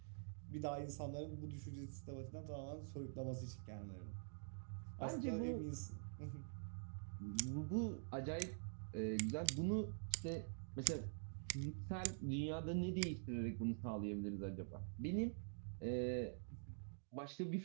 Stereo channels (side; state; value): left; silent; digital silence